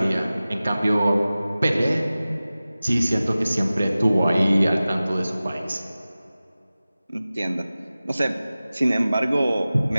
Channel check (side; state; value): both; inverted; correlation -0.97